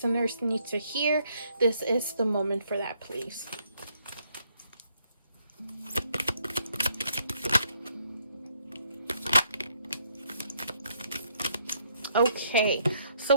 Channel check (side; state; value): both; inverted; correlation -0.71